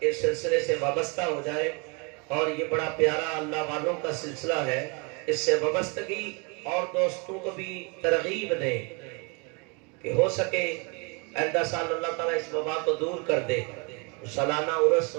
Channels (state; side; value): quieter; left; 32.0 dB